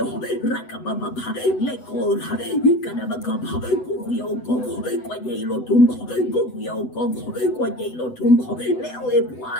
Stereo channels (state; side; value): late; right; 8.0 ms